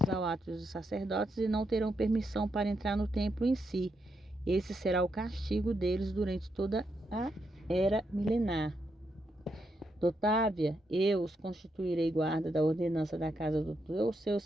ao ato dos sacerdotes e não terão permissão para entrar no templo em si. Esse será o castigo deles durante toda a era milenar. Otávia, eu os constituirei guarda da ordenança da casa do seu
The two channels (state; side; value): normal; both; correlation 0.81